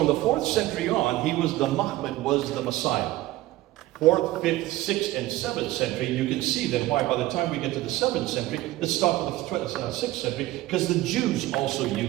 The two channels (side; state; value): left; quieter; 16.7 dB